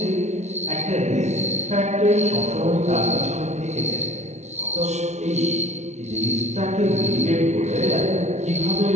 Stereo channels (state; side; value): late; left; 0.32 ms